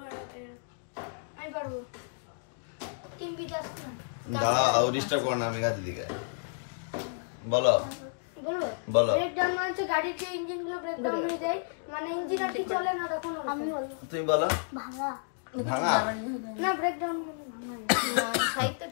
আমি পারবো। টিম বিকাশ না। দাঁড়াও, ডিস্টার্ব করো না মেঘা দিদিকে। বলো বলো। ব্রেকডাউন মানে হচ্ছে গাড়ির যে ইঞ্জিন গুলো ব্রেকডাউন হয়ে যায়, মানে ইঞ্জিন আর কি চলে না তখন। আমি বলবো তুমি বলো। ভাঙা না, ব্রেকডাউন মানে ভাঙা। সাহিত্য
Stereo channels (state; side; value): silent; right; digital silence